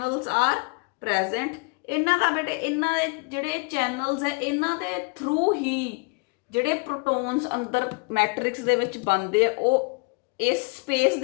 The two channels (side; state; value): right; quieter; 29.7 dB